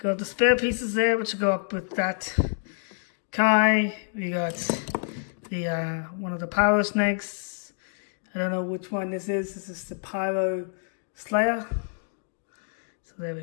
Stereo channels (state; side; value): silent; right; 60 dB below the other